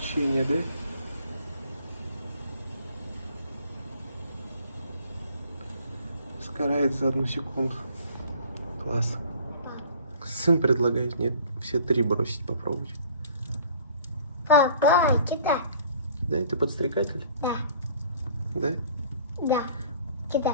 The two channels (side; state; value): both; inverted; correlation -0.51